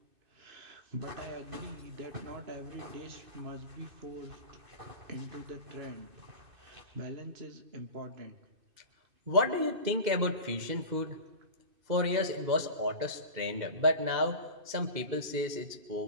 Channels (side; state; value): left; late; 2.6 ms